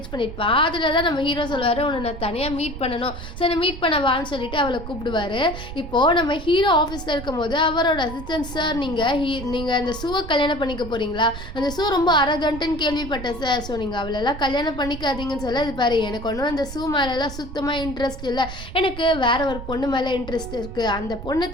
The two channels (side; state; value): right; noise; rumble, 10 dB below the sound